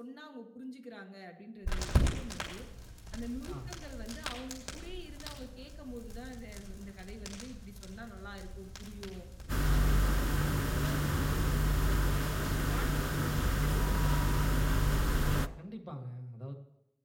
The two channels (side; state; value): both; identical; correlation 1.00